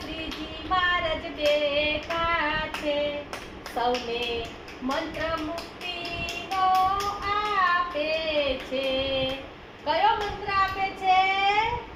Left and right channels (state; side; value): identical; both; correlation 1.00